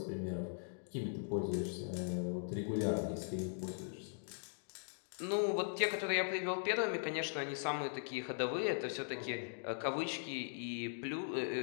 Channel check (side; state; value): right; silent; digital silence